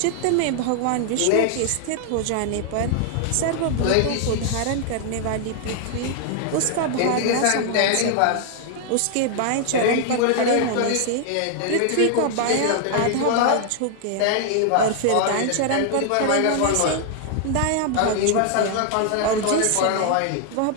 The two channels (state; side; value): different; both; correlation 0.00